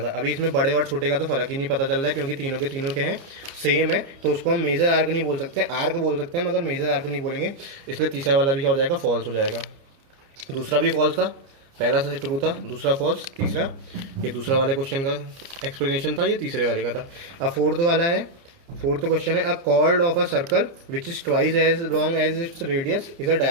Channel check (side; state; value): left; late; 29 ms